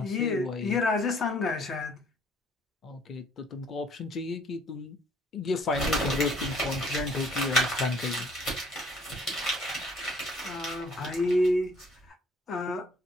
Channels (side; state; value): both; normal; correlation 0.59